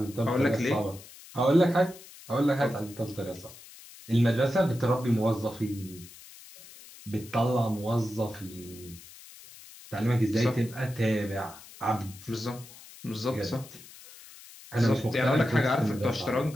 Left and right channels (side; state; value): left; noise; hiss, 19 dB below the sound